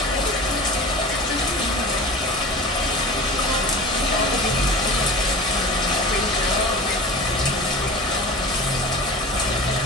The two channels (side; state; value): both; normal; correlation 0.36